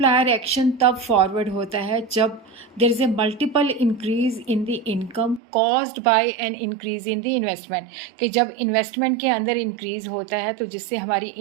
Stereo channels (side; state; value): left; drops out; at 5.4 s